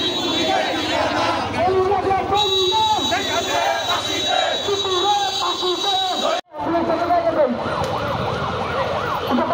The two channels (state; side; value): identical; both; correlation 1.00